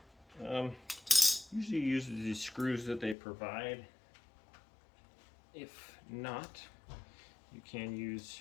Usually use the screws that they provide. If not, you can use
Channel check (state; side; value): drops out; right; at 3.2 s